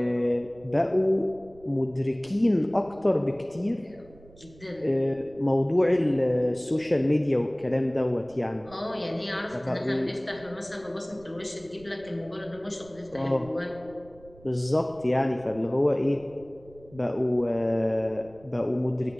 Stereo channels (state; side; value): noise; right; rumble, 23 dB below the sound